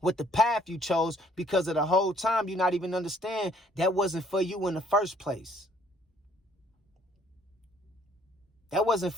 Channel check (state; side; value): normal; both; correlation 0.62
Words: with the path you chose, because of the whole time you not even understand that wasn't for you in the first place. That wasn't